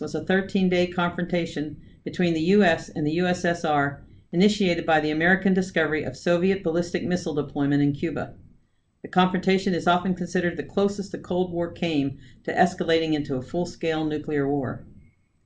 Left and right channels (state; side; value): identical; both; correlation 1.00